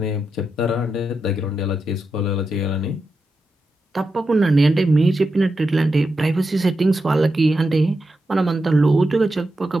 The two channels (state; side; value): normal; both; correlation 0.88